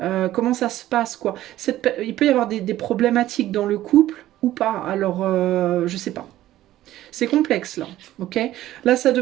comment ça se passe quoi? Il peut y avoir des problématiques dans le couple ou pas, alors je sais pas. C'est complexe là, ok? Là, ça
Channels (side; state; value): left; quieter; 14.3 dB